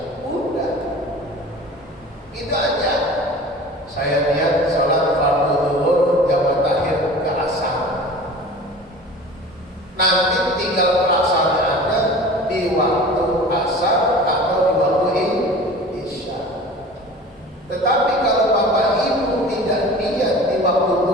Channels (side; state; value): both; normal; correlation 0.40